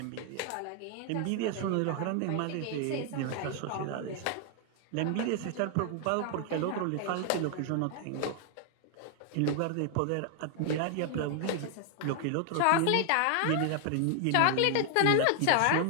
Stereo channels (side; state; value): both; different; correlation 0.00